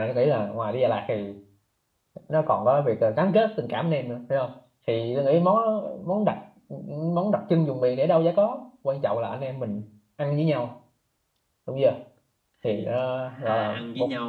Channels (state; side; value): identical; both; correlation 1.00